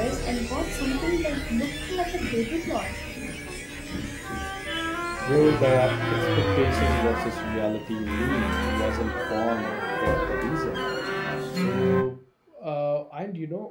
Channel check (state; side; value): identical; both; correlation 1.00